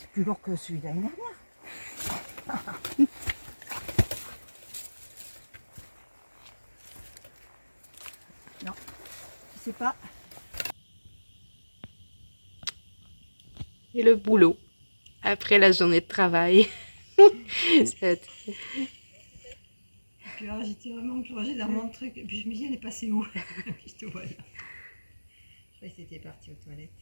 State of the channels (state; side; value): inverted; both; correlation -1.00